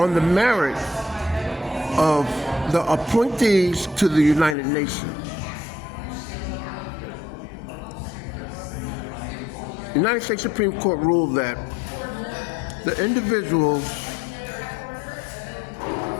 the merit of the appointees to the United Nations. The United States Supreme Court ruled that the individuals,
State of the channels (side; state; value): right; drops out; at 4.5 s